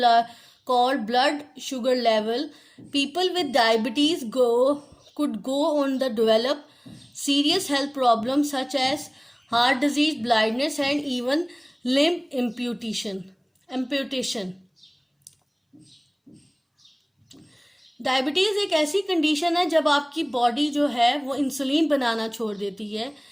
called blood sugar level. People with diabetes could go on to develop serious health problems such as heart disease, blindness and even limb amputation. Diabetes एक ऐसी कंडीशन है जब आपकी बॉडी जो है वो इंसुलिन बनाना छोड़ देती है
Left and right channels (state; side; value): identical; both; correlation 1.00